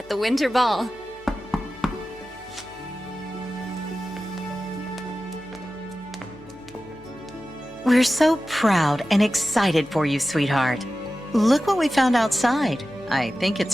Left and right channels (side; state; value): left; noise; hum, 25 dB below the sound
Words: the Winter Ball. We're so proud and excited for you, sweetheart. Look what we found outside. I think